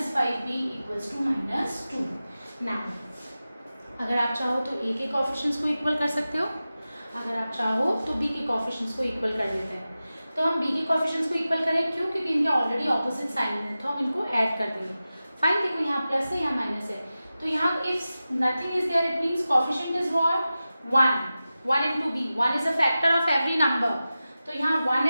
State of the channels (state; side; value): inverted; both; correlation -0.94